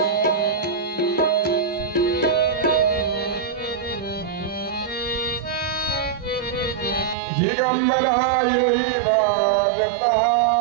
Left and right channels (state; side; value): drops out; left; at 7.2 s